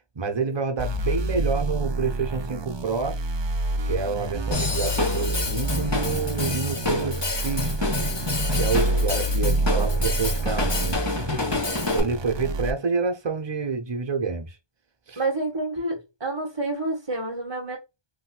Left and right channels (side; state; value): left; late; 1.2 ms